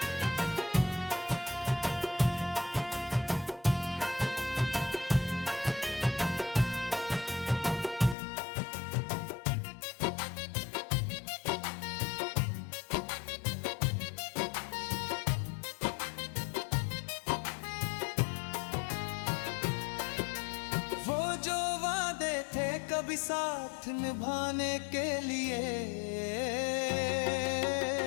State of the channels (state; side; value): drops out; right; at 8.2 s